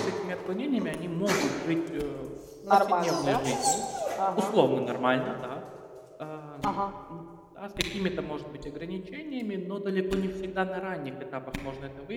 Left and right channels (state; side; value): identical; both; correlation 1.00